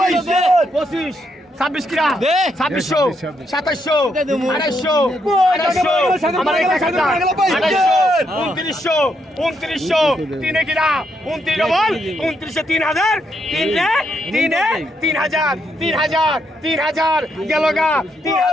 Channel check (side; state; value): both; normal; correlation 0.78